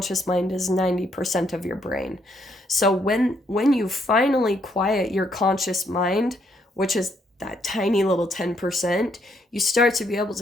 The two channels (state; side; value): normal; both; correlation 0.72